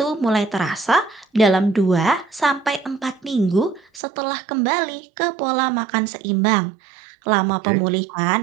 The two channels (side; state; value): left; drops out; at 4.0 s